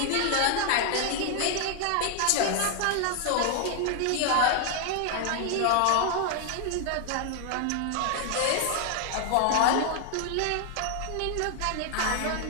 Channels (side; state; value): both; different; correlation 0.00